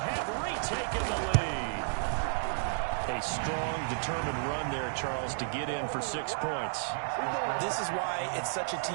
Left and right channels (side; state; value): left; silent; digital silence